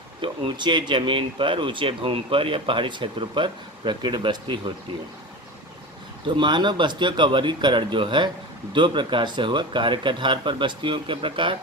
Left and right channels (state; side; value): normal; both; correlation 0.28